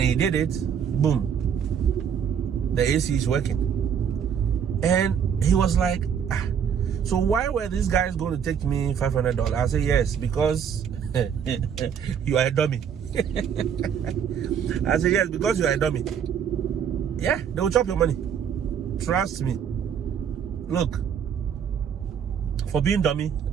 he did it, boom, the AC is working. And he was like, so why were these guys going to take me $500? I said, yes, because you are a dummy. I said, yes, because you are a dummy. Yeah, they will chop your money. Trust me. Look, for being dummy,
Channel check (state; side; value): quieter; left; 7.8 dB